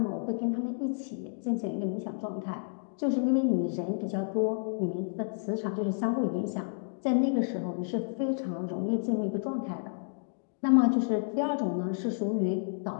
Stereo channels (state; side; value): silent; right; digital silence